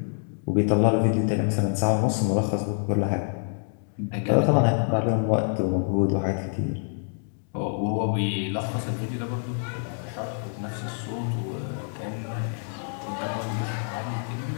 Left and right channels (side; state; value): right; silent; 60 dB below the other